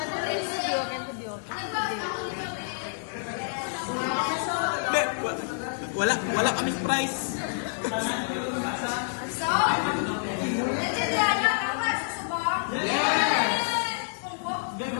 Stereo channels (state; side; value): silent; right; digital silence